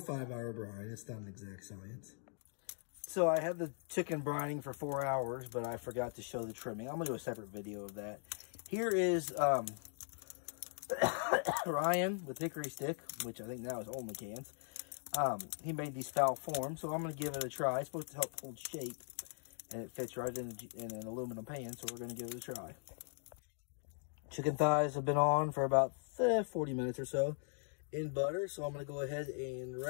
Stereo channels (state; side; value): silent; right; 51 dB below the other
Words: 5 hour brine. It's not an exact science. So I had the chicken brining for 4 hours, but I forgot to show the trimming. I'm going to do a separate video of that. Here is Ryan with hickory stick, which I think now is only cans. He made these foul forms, so I'm going to give it a try. It's supposed to help hold shape, and it fits right in an aluminum pan, so we're going to give it a try. Chicken thighs have been on for about 40 minutes or so in butter, so I'm going to go ahead and